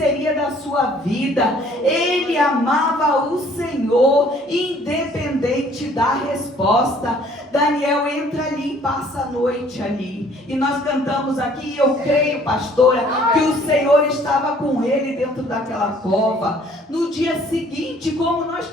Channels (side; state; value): both; normal; correlation 0.58